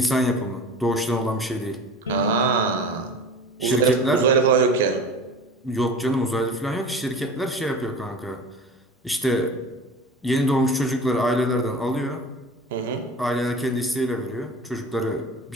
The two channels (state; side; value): normal; both; correlation 0.36